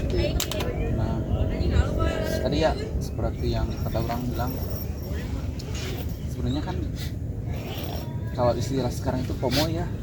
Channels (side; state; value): both; identical; correlation 1.00